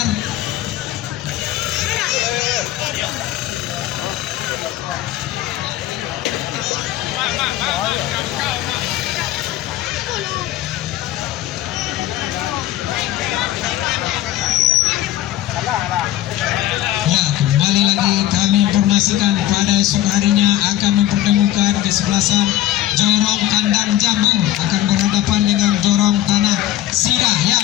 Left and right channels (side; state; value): right; quieter; 13.7 dB